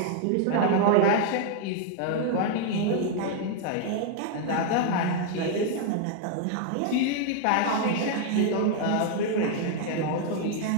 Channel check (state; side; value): different; both; correlation 0.00